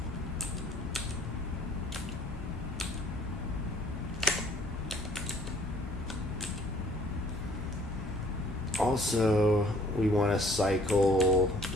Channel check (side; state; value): both; normal; correlation 0.57